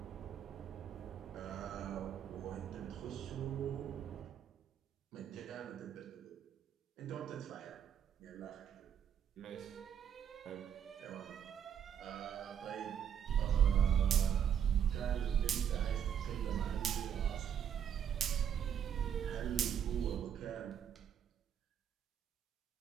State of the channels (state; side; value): quieter; left; 8.8 dB